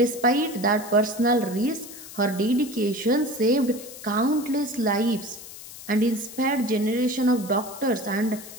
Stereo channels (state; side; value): noise; left; hiss, 15 dB below the sound